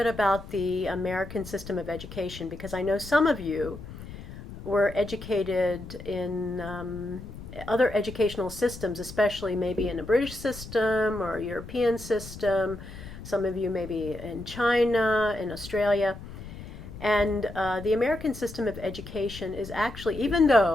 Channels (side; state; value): left; noise; rumble, 13 dB below the sound